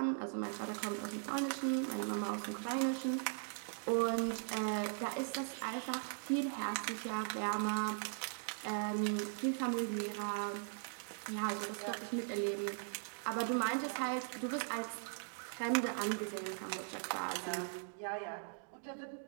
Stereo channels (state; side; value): silent; left; digital silence